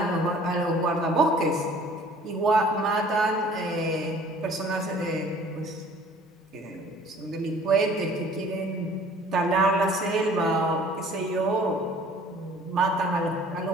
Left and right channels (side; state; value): both; normal; correlation 0.52